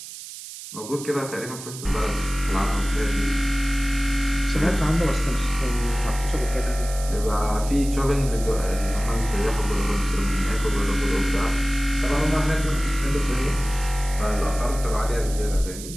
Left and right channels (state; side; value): noise; right; hiss, 12 dB below the sound